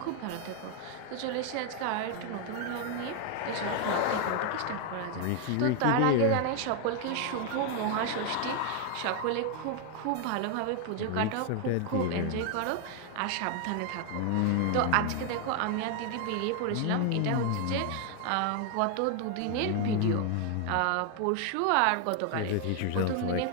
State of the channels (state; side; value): different; both; correlation 0.00